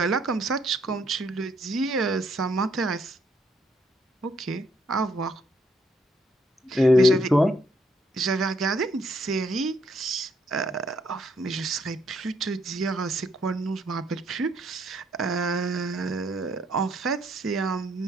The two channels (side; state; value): both; normal; correlation 0.71